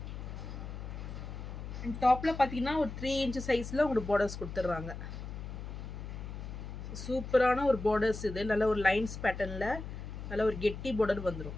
அண்ட் டாப்பில் பார்த்தீங்கன்னா ஒரு 3 inches சைஸில் உங்களுக்கு பார்டர்ஸ் கொடுத்துட்றாங்க. சூப்பரான ஒரு பார்டர்ஸ் இது. நல்ல ஒரு லைன்ஸ் பேட்டர்னில் நல்ல ஒரு கெட்டி பார்டர்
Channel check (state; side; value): noise; left; hum, 8 dB below the sound